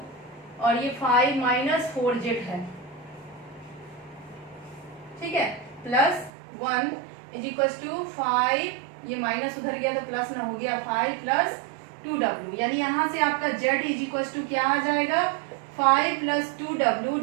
और ये 5 माइनस 4Z है। ठीक है, प्लस 1 इज इक्वल टू 5, ये माइनस उधर गया तो प्लस ना हो गया, 5 प्लस 2W, यानी यहाँ से आपका Z इज इक्वल टू क्या आ जाएगा, 5 plus 2W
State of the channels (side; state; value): left; drops out; at 6.3 s